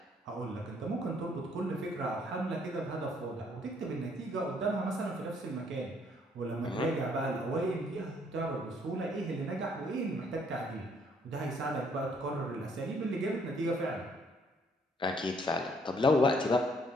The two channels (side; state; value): both; normal; correlation 0.66